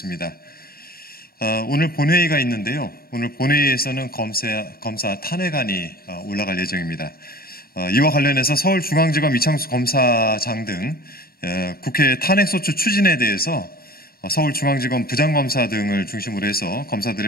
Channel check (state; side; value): late; right; 0.44 ms